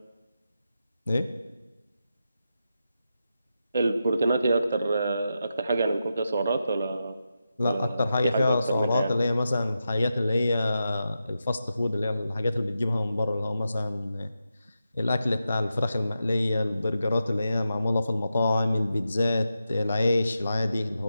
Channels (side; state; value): both; inverted; correlation -0.88